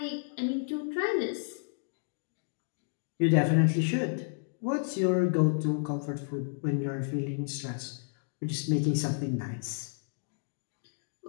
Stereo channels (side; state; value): right; silent; digital silence